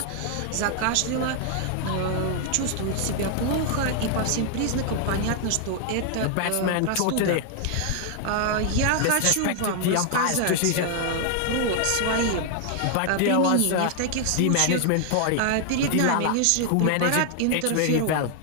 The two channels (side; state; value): both; different; correlation 0.00